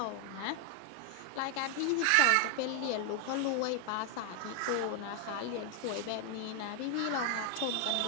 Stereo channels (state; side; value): different; both; correlation 0.00